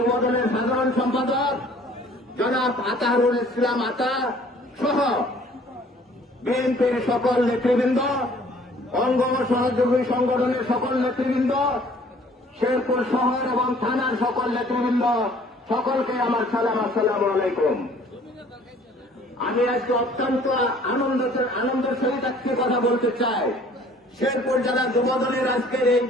সাধারণ সম্পাদক জনাব আতাহারুল ইসলাম আতা সহ বিএনপির সকল নেতৃবৃন্দ, অঙ্গ ও সহযোগী সংগঠনের সকল নেতৃবৃন্দ, শেরপুর শহর এবং থানার সকল নেতৃবৃন্দ, সকলকে আমার সালাম। আসসালামু আলাইকুম। আমি আজকে অত্যন্ত আনন্দের সহিত আজকে কথা বলতে চাই। শেরপুর জেলা যুবদলের আজকের এই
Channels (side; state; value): both; normal; correlation 0.55